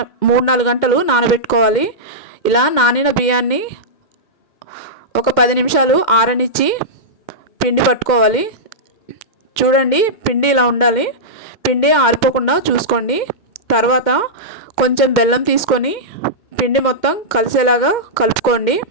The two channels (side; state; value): right; late; 2.1 ms